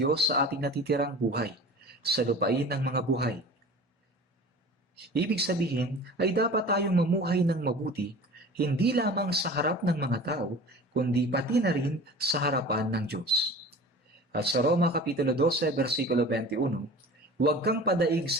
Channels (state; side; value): normal; both; correlation 0.40